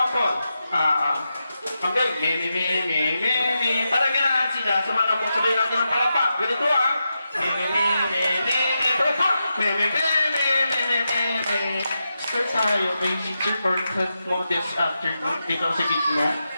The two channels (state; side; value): inverted; both; correlation -0.88